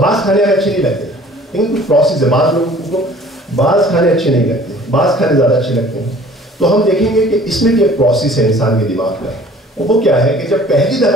کھانے اچھے نہیں لگتے, لیکن کچھ پروسیس ہے. بعض لوگوں کو بعض کھانے اچھے نہیں لگتے, بعض کھانے زیادہ اچھے لگتے ہیں. تو ہم دیکھیں گے کہ اس میں بھی ایک پروسیس ہے انسان کے دماغ کا. وہ کیا ہے کہ جب پہلی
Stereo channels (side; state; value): both; normal; correlation 0.51